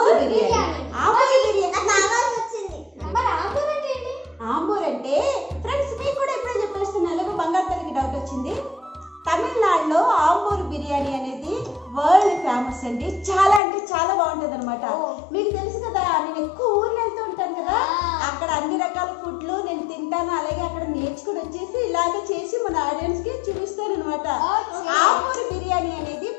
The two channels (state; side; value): drops out; right; at 13.6 s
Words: బిర్యానీ. ఆంబూర్ బిర్యానీ మరి ఆంబూర్ అంటే ఏంటి? ఆంబూర్ అంటే ఫ్రెండ్స్ మీకు కూడా ఎప్పుడో చెప్పేస్తున్నాను, ఎలాగో బంగారు తల్లికి డౌట్ వచ్చింది. తమిళనాడులో ఆంబూర్ బిర్యానీ అనేది వరల్డ్ ఫేమస్ అండి. చాలా అంటే చాలా బాగుంటుంది అనమాట. మీకు తెలుసు కదా, నేను ఎక్కువ ఊర్లో వెళ్తూ ఉంటాను కదా, అక్కడ అన్ని రకాల ఫుడ్లు నేను తింటాను. అలాగే అక్కడ నేర్చుకుని వచ్చేసి ఇలాగే చేసి మన ఆడియన్స్ కి చూపిస్తాను అనమాట. ఆంబూర్ బిర్యానీ అనేది